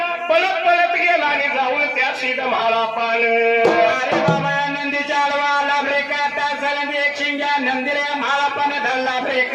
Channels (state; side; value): identical; both; correlation 1.00